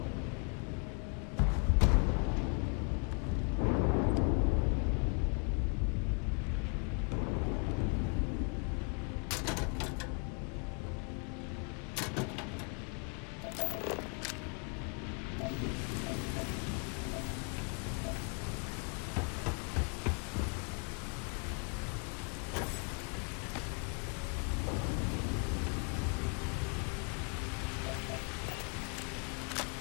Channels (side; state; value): right; quieter; 35.9 dB